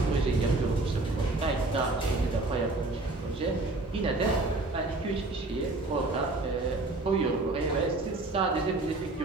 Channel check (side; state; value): left; quieter; 3.0 dB